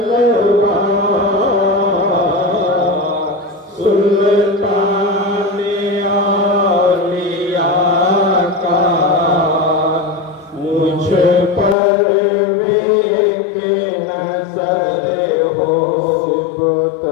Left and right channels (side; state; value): right; drops out; at 11.8 s